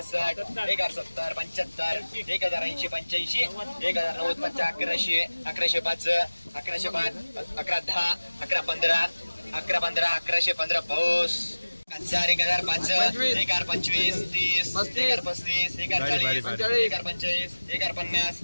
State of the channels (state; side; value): inverted; both; correlation -1.00